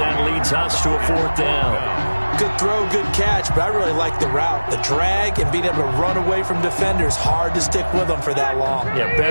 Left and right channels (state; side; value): inverted; both; correlation -1.00